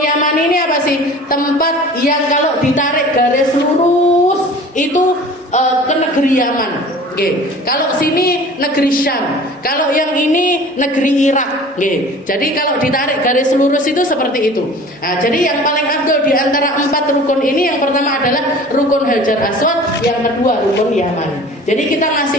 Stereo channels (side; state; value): both; normal; correlation 0.43